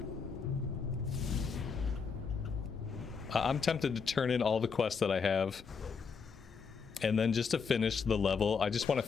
I'm tempted to turn in all the quests that I have. And then just to finish the level, I just want to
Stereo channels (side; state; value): right; quieter; 5.6 dB